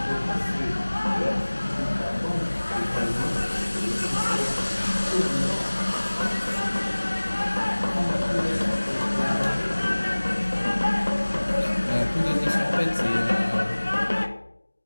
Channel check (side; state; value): both; inverted; correlation -1.00